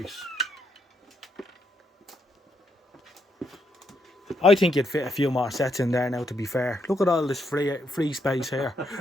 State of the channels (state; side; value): normal; both; correlation 0.77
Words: I think you'd fit a few more sets in there now, to be fair. Look at all this free space here.